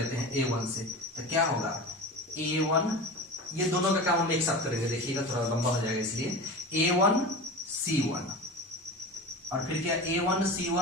हैं a1 से, तो क्या होगा a1, ये दोनों का काम हम एक साथ करेंगे, देखिएगा थोड़ा लंबा हो जाएगा, इसलिए a1 c1 और फिर क्या a1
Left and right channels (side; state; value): both; normal; correlation 0.30